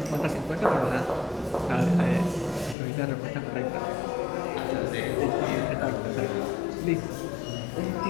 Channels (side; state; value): right; drops out; at 2.8 s